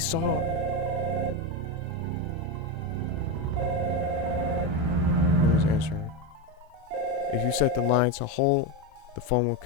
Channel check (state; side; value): late; left; 24 ms